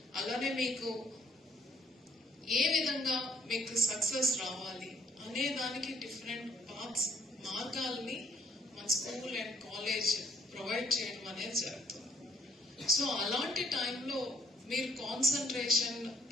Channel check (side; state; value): both; normal; correlation 0.65